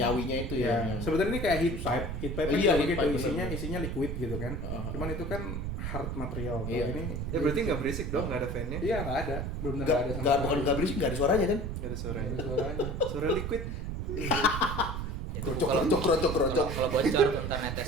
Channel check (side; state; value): right; noise; rumble, 4 dB below the sound